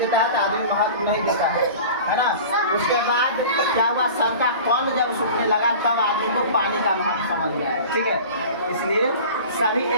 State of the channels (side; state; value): both; inverted; correlation -0.39